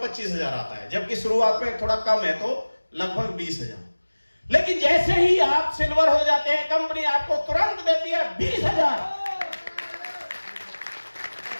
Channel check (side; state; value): both; inverted; correlation -1.00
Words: आता है, जबकि शुरुआत में थोड़ा कम है तो लगभग 20,000। लेकिन जैसे ही आप सिल्वर हो जाते हैं, कंपनी आपको तुरंत देती है 20,000।